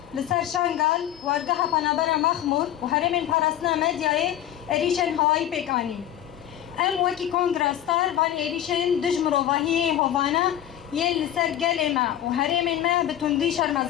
لسر شانگال وارگاه پنابر مخمور و هرمین پارسنا مدیای ایریشن هوایی پیکانی ام وکی کنگرستار بان ایریشن دجمروواهی هوانا یه لسر گل ما و هرمین ما بتندی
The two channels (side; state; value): right; quieter; 11.7 dB